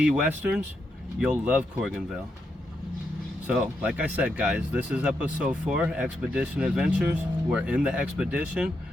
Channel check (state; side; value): normal; both; correlation 0.82